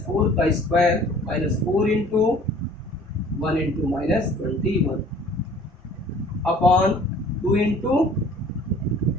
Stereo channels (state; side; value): normal; both; correlation 0.51